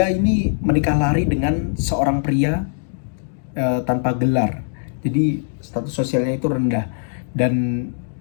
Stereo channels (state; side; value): silent; right; digital silence